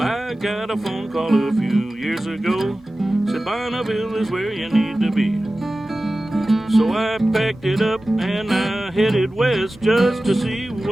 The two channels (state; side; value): normal; both; correlation 0.96